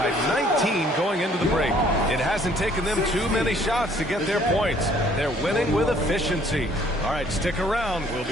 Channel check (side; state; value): both; normal; correlation 0.60